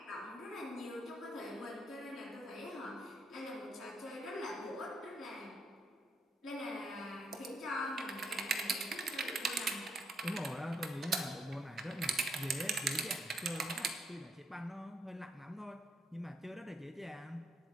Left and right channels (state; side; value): normal; both; correlation 0.75